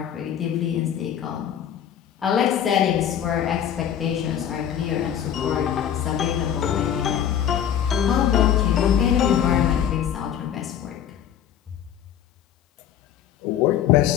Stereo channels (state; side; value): quieter; right; 9.6 dB